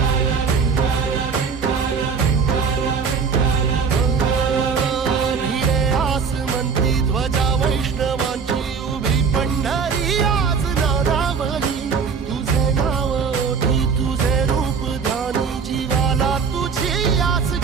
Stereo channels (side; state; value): left; quieter; 5.7 dB